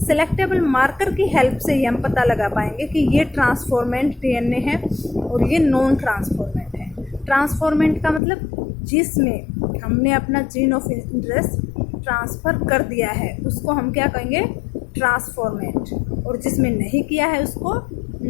Selectable marker की हेल्प से ही हम पता लगा पाएंगे कि ये ट्रांसफॉर्मेंट डीएनए है और ये नॉन ट्रांसफॉर्मेंट है। ट्रांसफॉर्मेंट का मतलब जिसमें हमने अपना जीन ऑफ इंटरेस्ट ट्रांसफ़र कर दिया है उसको हम क्या कहेंगे? ट्रांसफॉर्मेंट। और जिसमें नहीं किया है उसको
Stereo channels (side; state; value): right; drops out; at 8.2 s